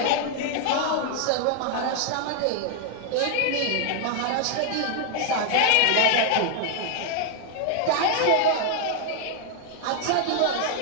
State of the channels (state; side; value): different; both; correlation 0.00